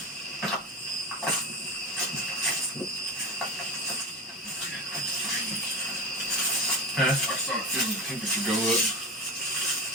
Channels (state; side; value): normal; both; correlation 0.25